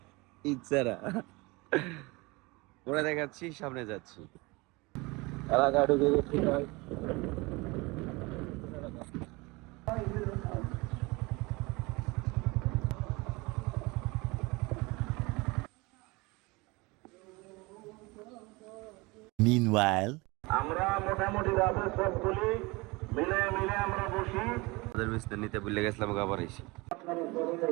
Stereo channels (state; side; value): quieter; left; 24.7 dB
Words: ইচ্ছারা। ওরা দেখাচ্ছি, সামনে যাচ্ছি। এলাকা ঢুকে গেছি। Meanwhile, আমরা মোটামুটি রাতে সবগুলি মিলে আমরা বসি। ওদের বিস্তার নিতে ভুলে গেছিলাম, আবার এসে